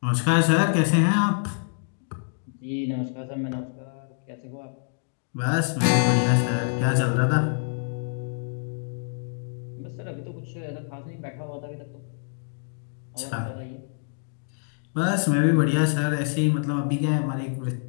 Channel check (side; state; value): right; silent; digital silence